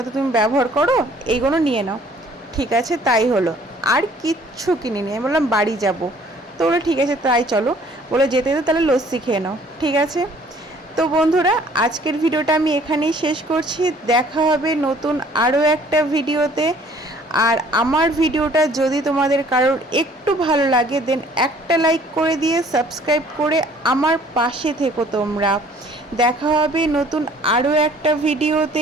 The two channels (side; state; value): both; normal; correlation 0.56